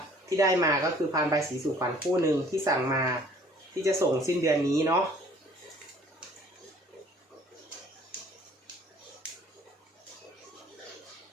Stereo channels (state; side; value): normal; both; correlation 0.56